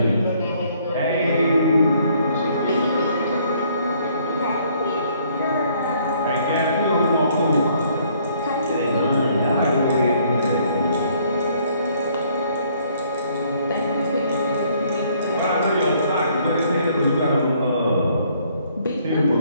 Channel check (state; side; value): inverted; both; correlation -0.64